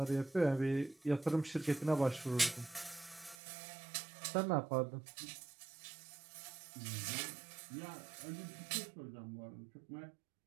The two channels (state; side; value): drops out; left; at 3.4 s